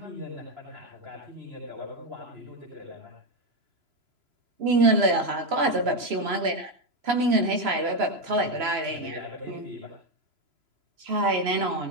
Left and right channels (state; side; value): late; left; 3.0 ms